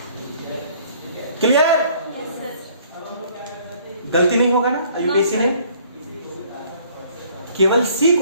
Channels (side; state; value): both; inverted; correlation -0.58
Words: क्लियर? यस सर गलती नहीं होगा ना यूपीएससी ने? केवल सी